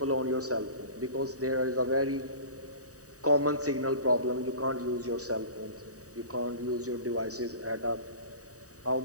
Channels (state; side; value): late; left; 0.66 ms